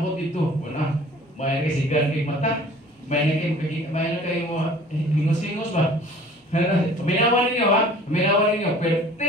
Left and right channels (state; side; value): normal; both; correlation 0.49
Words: ito, wala, may resigan kay mata, may na kayo mo, hingos-hingos ba? Paminawan ninyo ha, paminawan ninyo, pero